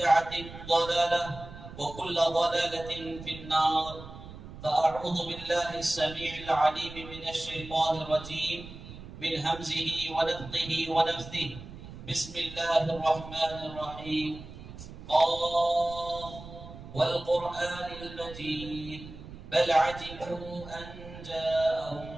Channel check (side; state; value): right; noise; rumble, 14 dB below the sound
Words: ضلالة وكل ضلالة في النار فأعوذ بالله السميع العليم من الشيطان الرجيم من همزه ونفخه ونفثه بسم الله الرحمن الرحيم قاف والقرآن المجيد بل عجبوا أن جاءهم